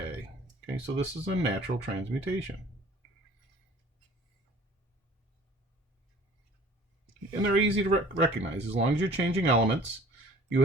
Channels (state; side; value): normal; both; correlation 0.49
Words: Okay, so this is a natural transmutation. And they're easy to recognize. As long as you're changing elements, you